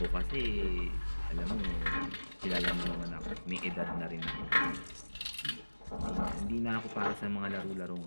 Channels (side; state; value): both; inverted; correlation -1.00